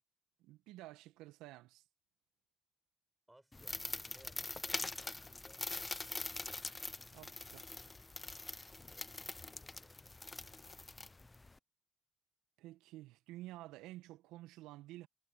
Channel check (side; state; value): both; normal; correlation 0.91